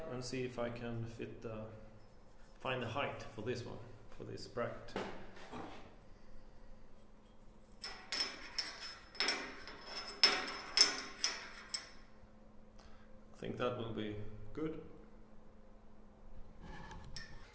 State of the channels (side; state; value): both; identical; correlation 1.00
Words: and see if I can find the height for this one, for this bracket. I think that will be good.